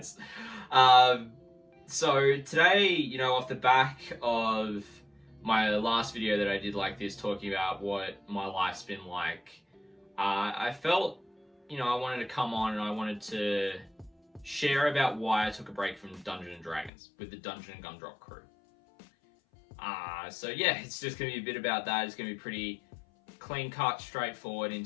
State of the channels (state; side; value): drops out; right; at 16.9 s